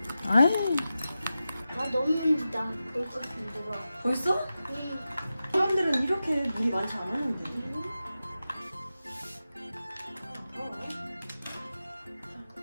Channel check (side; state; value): both; inverted; correlation -0.92